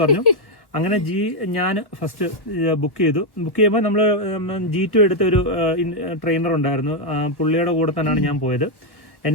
പറഞ്ഞു. അങ്ങനെ ഞാൻ ഫസ്റ്റ് ബുക്ക് ചെയ്തു. ബുക്ക് ചെയ്യുമ്പോൾ നമ്മൾ G2 എടുത്ത ഒരു ട്രെയിനർ ഉണ്ടായിരുന്നു. പുള്ളിയുടെ കൂടെ തന്നെയാണ് ഞാൻ പോയത്.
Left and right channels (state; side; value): late; right; 1.3 ms